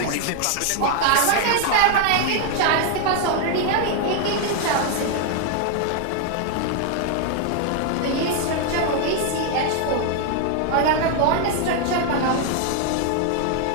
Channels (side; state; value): both; different; correlation 0.00